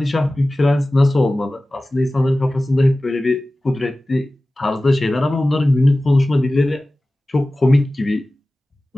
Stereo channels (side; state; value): both; normal; correlation 0.97